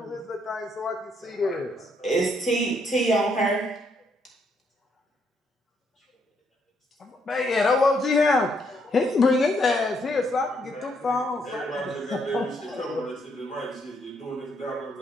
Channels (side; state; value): both; normal; correlation 0.74